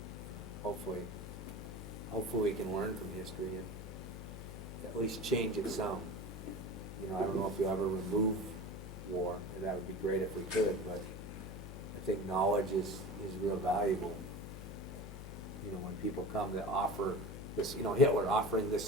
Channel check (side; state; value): left; noise; hum, 9 dB below the sound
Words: Hopefully we can learn from history and at least change it some. I don't know if you'll ever remove war, and that would be great if we could, but I think knowledge is real valuable. When people come to offer this, Hitler offering this